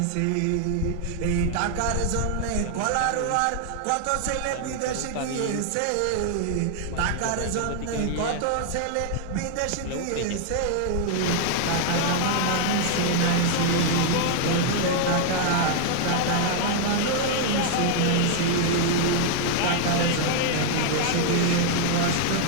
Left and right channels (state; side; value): different; both; correlation 0.00